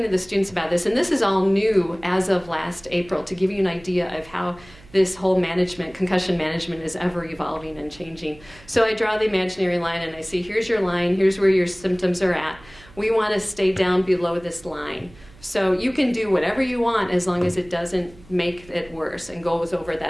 to the students about this, and this is all new as of last April, to give you an idea of how this whole concussion management is ever evolving and changing. So I draw the imaginary line and I say, here's your line, here's where your symptoms are at. We want to stay down below this line. So you can do whatever you want as long as it doesn't make it worse and goes over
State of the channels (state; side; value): noise; right; hum, 23 dB below the sound